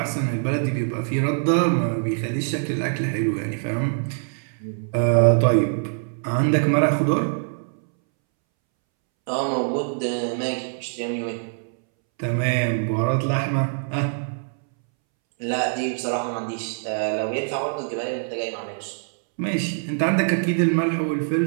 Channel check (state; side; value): silent; left; 63 dB below the other